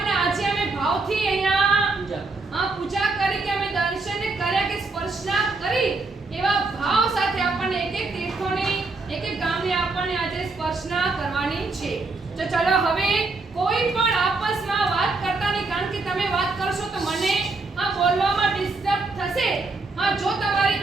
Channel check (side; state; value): left; quieter; 3.6 dB